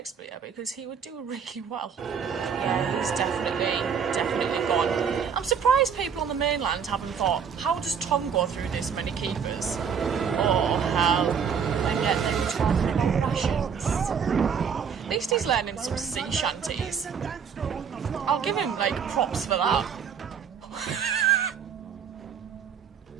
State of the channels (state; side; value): quieter; left; 7.0 dB